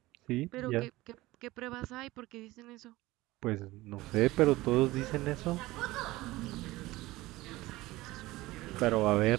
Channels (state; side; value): quieter; left; 18.8 dB